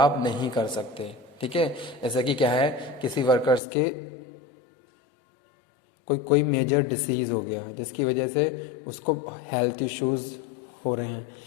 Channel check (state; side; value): drops out; right; at 3.6 s